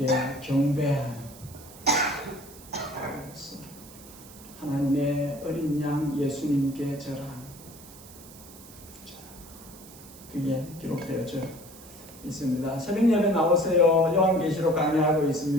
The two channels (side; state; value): right; noise; hiss, 19 dB below the sound